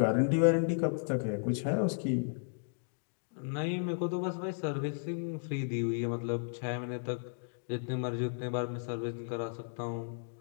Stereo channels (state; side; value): silent; right; digital silence